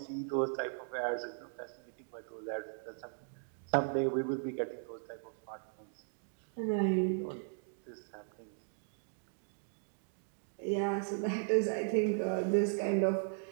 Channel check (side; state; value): left; silent; digital silence